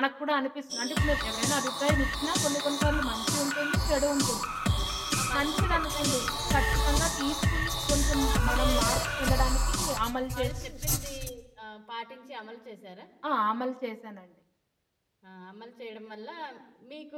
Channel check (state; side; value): identical; both; correlation 1.00